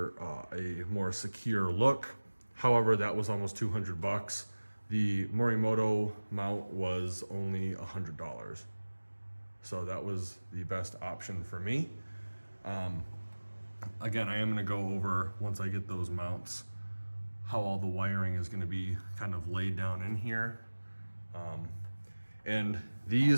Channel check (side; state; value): both; inverted; correlation -1.00